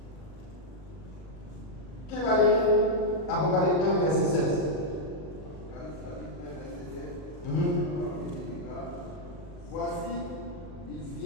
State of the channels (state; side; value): late; right; 40 ms